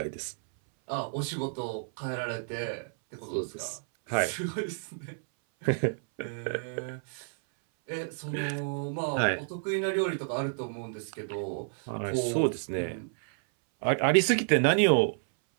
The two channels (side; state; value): left; silent; 58 dB below the other